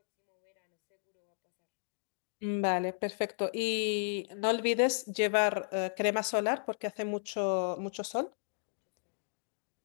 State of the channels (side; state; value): right; silent; digital silence